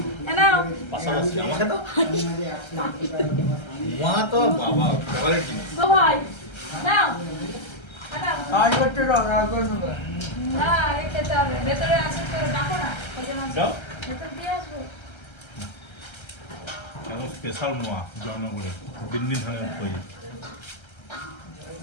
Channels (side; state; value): right; late; 1.3 ms